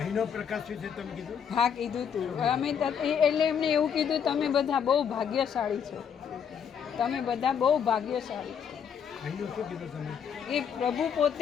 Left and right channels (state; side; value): quieter; right; 7.6 dB